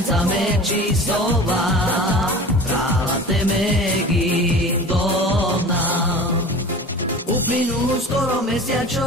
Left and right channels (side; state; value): both; normal; correlation 0.37